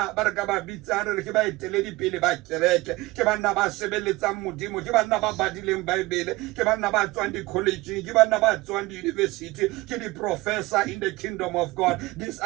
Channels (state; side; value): quieter; left; 20.9 dB